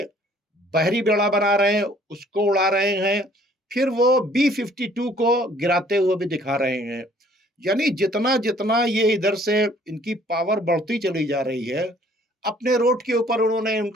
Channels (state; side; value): normal; both; correlation 0.58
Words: बहरी बेड़ा बना रहे हैं, उसको उड़ा रहे हैं, फिर वो B-52 को गिराते हुए भी दिखा रहे हैं। यानी जितना जितना ये इधर से इनकी पावर बढ़ती चली जा रही है, अपने रोड के ऊपर उन्होंने